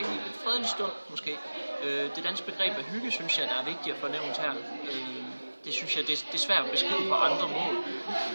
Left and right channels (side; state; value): both; inverted; correlation -1.00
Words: fredelig stund måske. Det danske begreb af hygge, synes jeg, der er vigtigt at få nævnt her. Det synes jeg, det er svært at beskrive på andre mål,